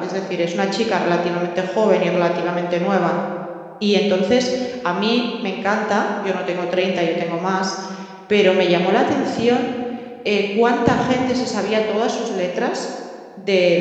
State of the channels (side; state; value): both; identical; correlation 1.00